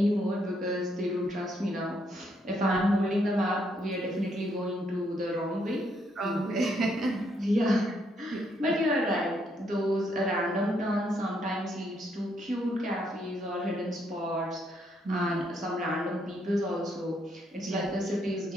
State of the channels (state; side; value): normal; both; correlation 0.74